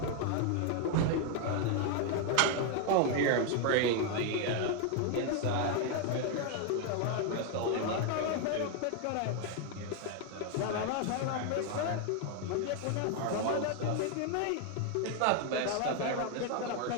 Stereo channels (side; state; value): both; different; correlation 0.01